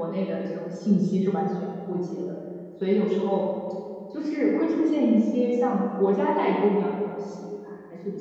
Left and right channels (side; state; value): both; identical; correlation 1.00